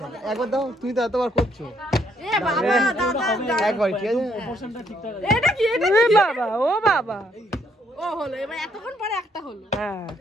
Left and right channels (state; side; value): normal; both; correlation 0.70